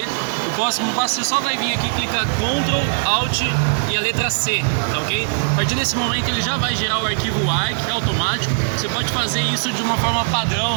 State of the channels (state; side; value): silent; left; 63 dB below the other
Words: O próximo passo, você só vai vir aqui, clicar Ctrl, Alt e a letra C, tá ok? A partir desse momento ele já vai gerar o arquivo ARC, que é automático. Você pode fazer isso de uma forma